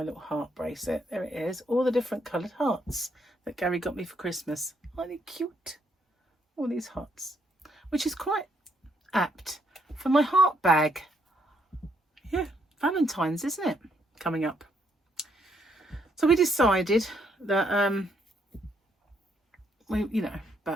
little heart bracelet. There it is, all the different coloured hearts that Gary got me for Christmas. Aren't they cute? All these hearts, which is quite apt for my heart bag. Yeah, Valentine's, isn't it, coming up? So we decided that we, you know,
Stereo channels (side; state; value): both; normal; correlation 0.73